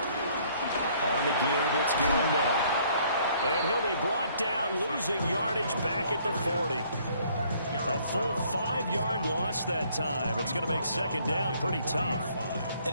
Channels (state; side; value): inverted; both; correlation -0.62